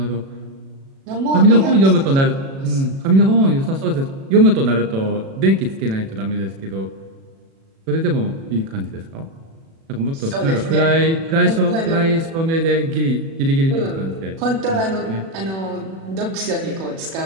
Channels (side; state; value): left; late; 36 ms